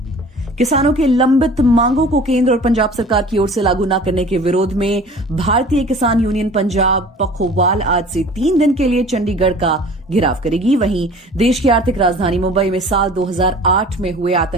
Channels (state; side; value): normal; both; correlation 0.45